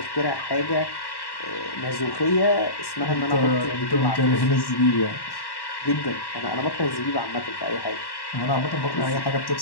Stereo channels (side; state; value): right; late; 1.1 ms